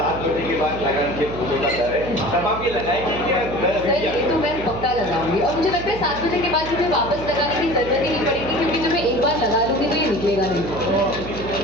बजे के बाद लगान के फूलों का डर है तब आप ये लगाएंगे कि घर सर अभी ये तो मैं पक्का लगाऊंगी और मुझे लगता है 7 बजे के बाद मुझे वापस लगाने की जरूरत ही नहीं पड़ेगी क्योंकि जब मैं एक बार लगा लूंगी तो ये निकलेगा नहीं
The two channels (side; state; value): right; noise; hum, 10 dB below the sound